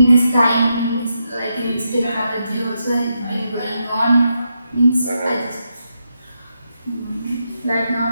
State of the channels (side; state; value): both; inverted; correlation -0.83